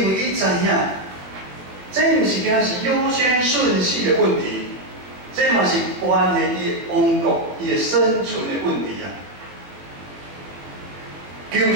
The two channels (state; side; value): late; left; 20 ms